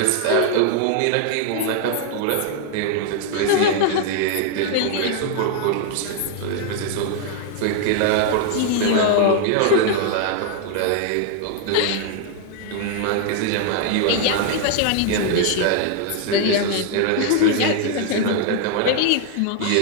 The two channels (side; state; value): both; different; correlation 0.00